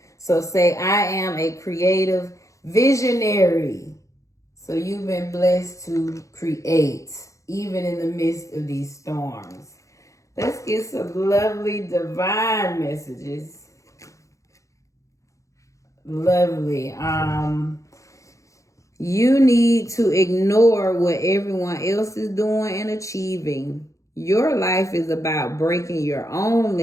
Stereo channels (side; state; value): right; late; 0.15 ms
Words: So say, I am a creative visionary. So you've been blessed to create, even in the midst of these storms. Let's get some lovely divine messages. Lovely. You need to ignore what everyone else is doing and achieving. Your life is about breaking your own